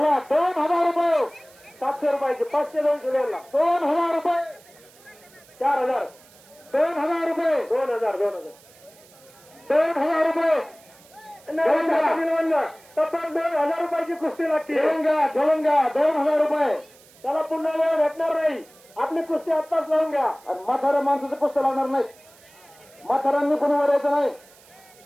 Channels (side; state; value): right; noise; hiss, 26 dB below the sound